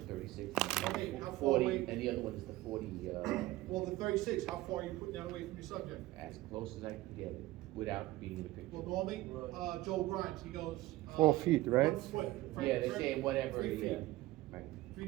36. Okay, how far 40, away? and the other one is the 40, Well, the 36, how far are you putting that away from your subject? as close as I can get it, without being in the picture. Well, normally, Right. Joe Grimes, he goes. 4 feet, right? 1 foot. Yeah, they say whatever, 3 yeah, feet, right,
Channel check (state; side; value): quieter; left; 17.5 dB